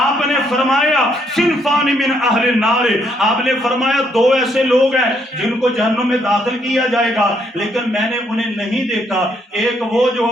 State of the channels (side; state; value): both; normal; correlation 0.72